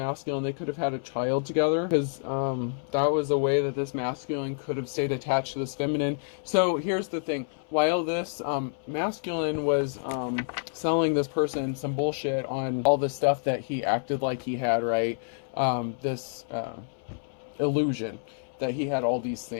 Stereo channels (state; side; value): silent; right; 59 dB below the other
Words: They could have had a child together, because that was a way that this masculine could have stayed attached to this feminine. So here's the thing. While this masculine was selling this person some bullshit on all the stuff that he acted like he had, right? This illusion that he had all these